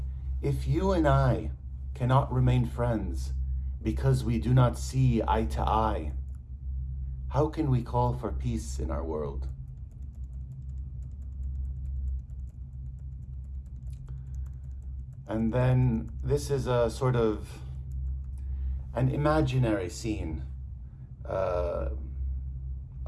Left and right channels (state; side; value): identical; both; correlation 1.00